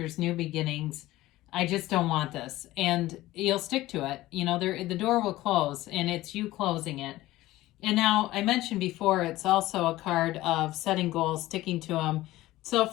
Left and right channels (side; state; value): right; quieter; 16.8 dB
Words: new beginnings. I just don't want this. And you'll stick to it. You know, the door will close and it's you closing it. And now I mentioned before, it's also a card of setting goals, sticking to them. So